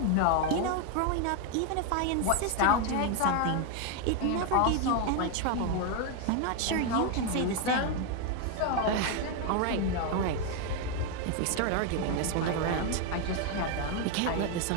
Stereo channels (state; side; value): different; both; correlation 0.01